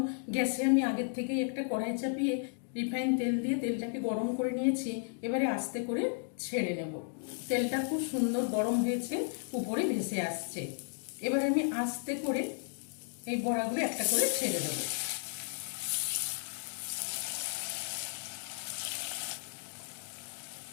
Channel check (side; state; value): right; silent; 55 dB below the other